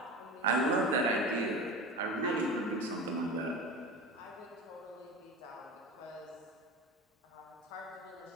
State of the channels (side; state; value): both; normal; correlation 0.30